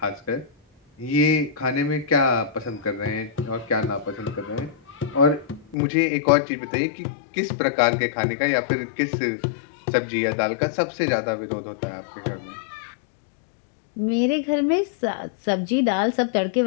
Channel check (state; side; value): drops out; right; at 5.8 s